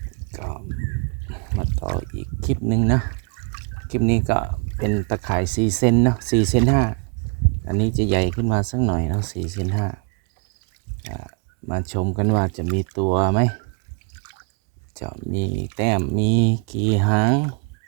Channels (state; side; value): quieter; left; 35.2 dB